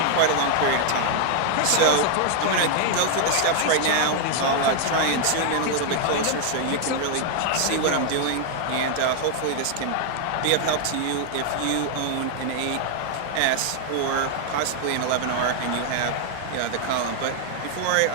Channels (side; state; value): both; different; correlation 0.00